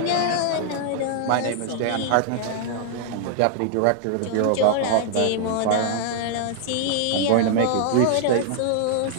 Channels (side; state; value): both; different; correlation -0.01